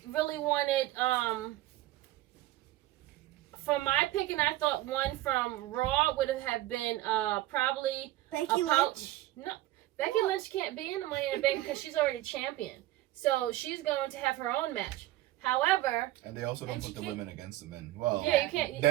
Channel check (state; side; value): quieter; left; 16.0 dB